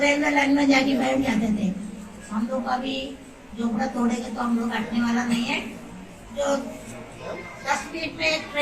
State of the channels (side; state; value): both; identical; correlation 1.00